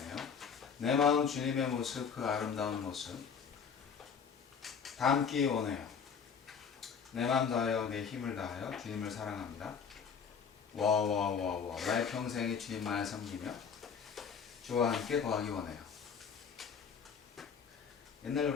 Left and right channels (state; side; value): quieter; right; 6.5 dB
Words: 내 마음 주님의 모습, 그 아름다운 모습 담기 원해요. 내 마음 다하여 내 힘을 다하여 주님을 사랑합니다. 와와와와 나의 평생에 주님만을 섬기며 주와 함께 거하기 원해요. 옛날